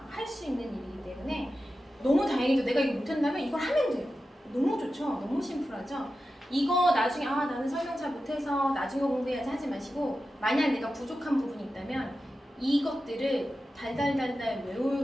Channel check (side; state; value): both; normal; correlation 0.92